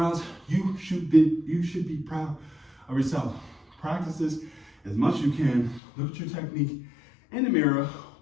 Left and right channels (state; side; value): drops out; right; at 5.8 s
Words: You should be proud of yourself. Practice this as much as you can. Look at your technique in the mirror.